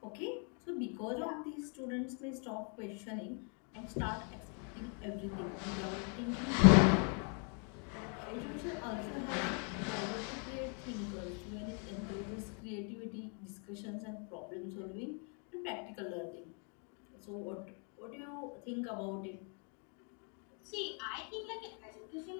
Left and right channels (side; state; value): right; quieter; 39.9 dB